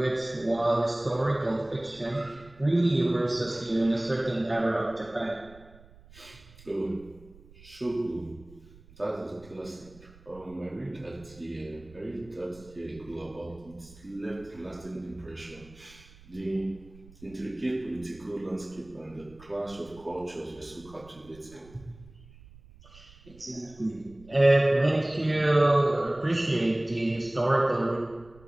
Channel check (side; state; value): right; noise; rumble, 23 dB below the sound